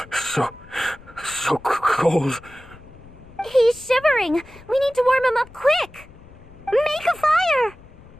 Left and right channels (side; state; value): left; noise; rumble, 22 dB below the sound